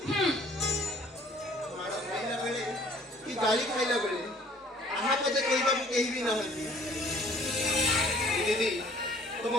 माड़ा खाइला बेले कि गाली खाइला बेले आहा पदे कहबा को केही भी ना होती दीदी तुम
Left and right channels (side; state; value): both; normal; correlation 0.56